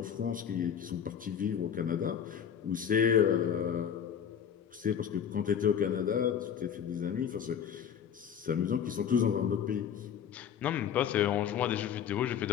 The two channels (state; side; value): quieter; right; 8.4 dB